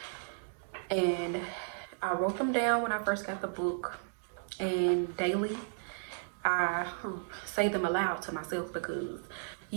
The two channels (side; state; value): left; silent; digital silence